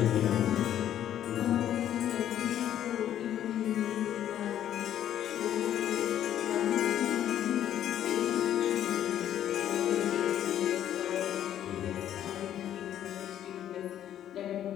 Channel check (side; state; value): right; quieter; 11.0 dB